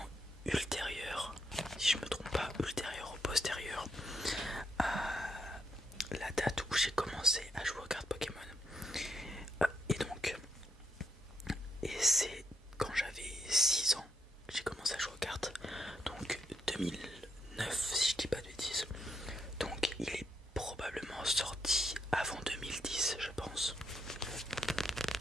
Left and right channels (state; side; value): normal; both; correlation 0.78